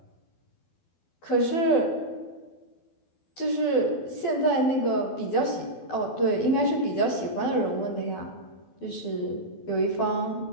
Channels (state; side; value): late; right; 12 ms